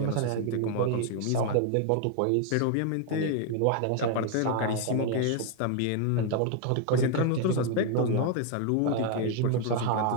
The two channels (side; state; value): both; different; correlation 0.00